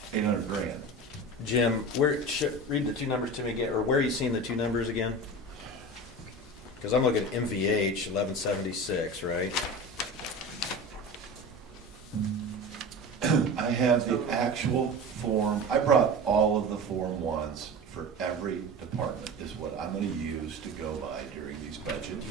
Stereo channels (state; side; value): normal; both; correlation 0.31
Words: 800 grand. Jim, read the two numbers to me again, or where are you seeing the two numbers again? Because I'm looking at MVH 1176, right? I have the actual form, I brought all of the Form 1s for every department is what I'm gonna use to go by during these budget